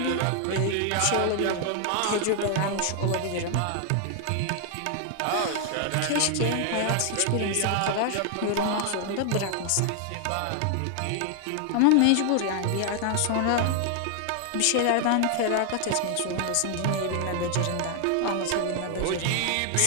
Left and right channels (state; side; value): different; both; correlation 0.00